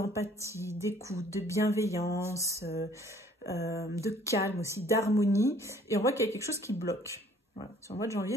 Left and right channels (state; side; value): normal; both; correlation 0.57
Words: d'écoute, de bienveillance, de calme aussi, d'harmonie. Et on voit qu'il y a quelque chose qui bloque. Voilà. Sur le mois de janvier,